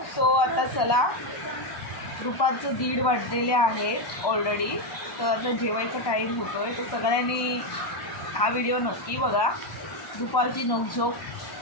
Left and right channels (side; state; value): right; late; 1.2 ms